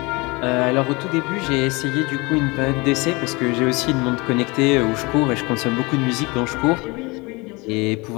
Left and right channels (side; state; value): right; quieter; 25.7 dB